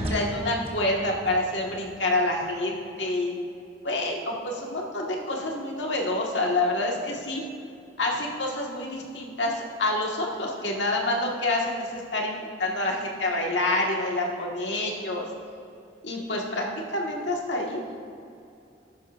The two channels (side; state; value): both; normal; correlation -0.03